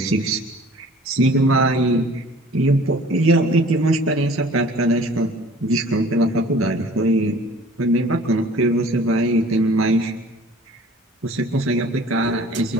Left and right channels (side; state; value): both; normal; correlation 0.49